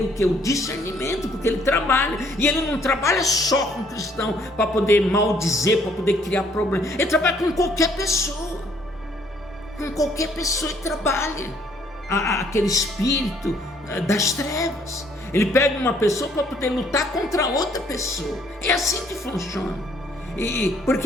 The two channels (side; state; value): both; normal; correlation 0.64